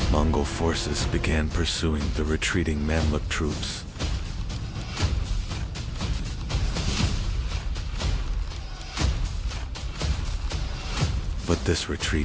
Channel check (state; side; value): identical; both; correlation 1.00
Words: Mongol forces began pursuing the retreating Mamluk troops. But this